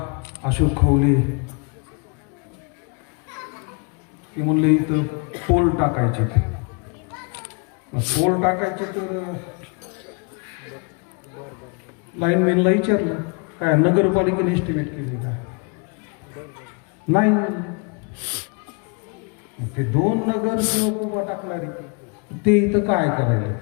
अशोक खवले ते म्हणले इथं पोल टाकायचे. पोल टाकायचे तर लाईनमॅनला विचारलं काय नगरपालिकेने एस्टिमेट केले का? नाही. ते 2 नगरसेवक उभा टाकणारे ते इथं काय करायला?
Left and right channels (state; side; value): quieter; right; 34.6 dB